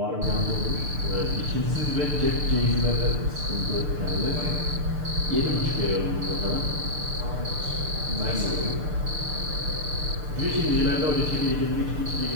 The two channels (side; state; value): left; late; 6.7 ms